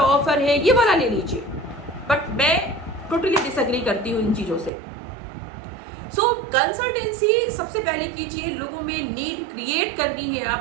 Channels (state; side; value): drops out; left; at 4.7 s